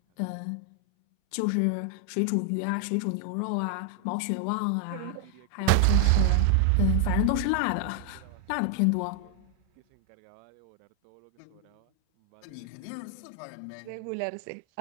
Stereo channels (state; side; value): different; both; correlation 0.00